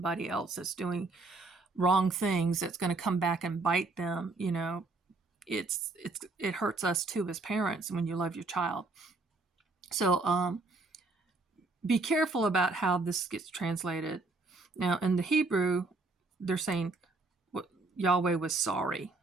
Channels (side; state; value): left; quieter; 3.4 dB